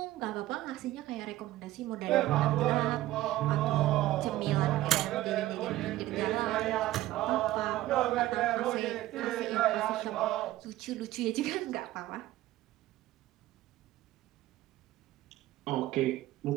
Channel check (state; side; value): quieter; left; 15.5 dB